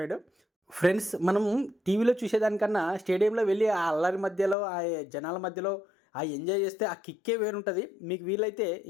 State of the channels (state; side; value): drops out; right; at 4.5 s